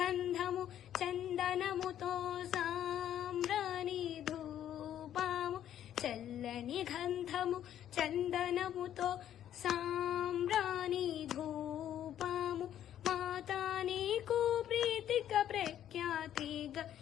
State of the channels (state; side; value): quieter; right; 10.9 dB